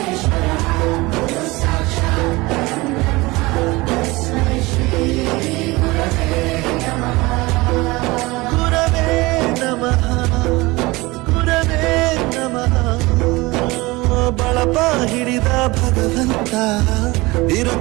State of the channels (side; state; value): left; quieter; 22.1 dB